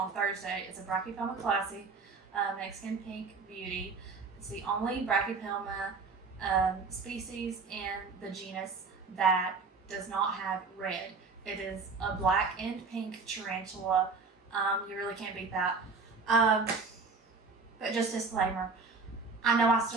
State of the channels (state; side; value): quieter; left; 4.4 dB